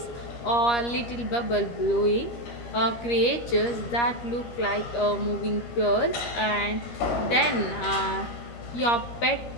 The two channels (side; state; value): right; late; 13 ms